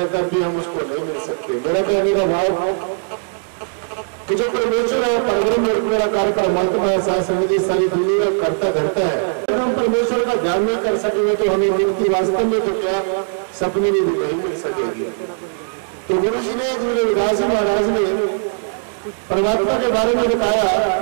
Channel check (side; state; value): left; silent; digital silence